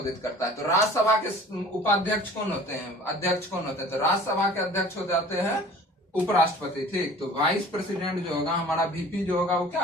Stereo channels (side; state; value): both; normal; correlation 0.46